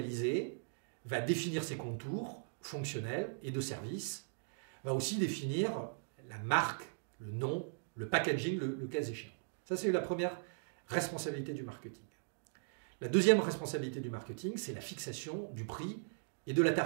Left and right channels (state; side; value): silent; left; digital silence